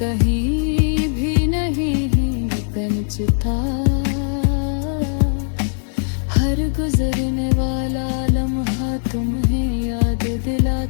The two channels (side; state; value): right; silent; digital silence